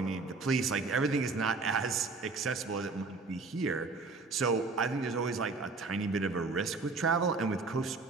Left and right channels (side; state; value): left; quieter; 4.0 dB